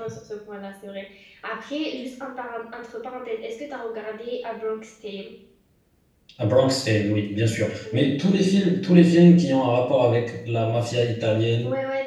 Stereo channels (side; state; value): both; identical; correlation 1.00